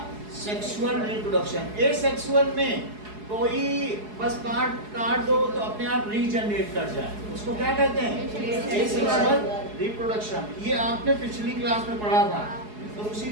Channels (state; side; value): late; left; 4.7 ms